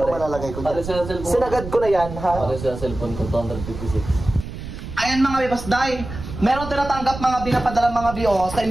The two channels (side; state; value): right; noise; rumble, 10 dB below the sound